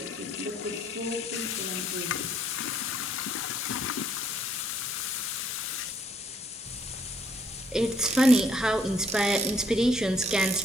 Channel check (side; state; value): both; normal; correlation 0.66